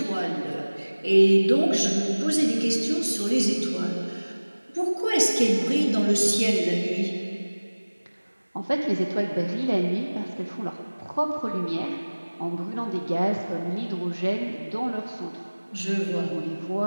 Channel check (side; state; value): both; inverted; correlation -1.00